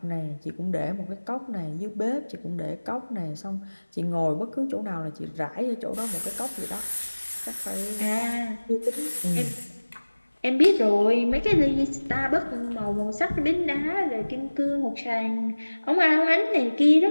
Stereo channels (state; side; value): inverted; both; correlation -1.00